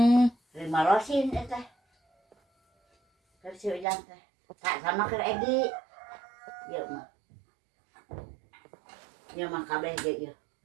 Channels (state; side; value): drops out; left; at 3.9 s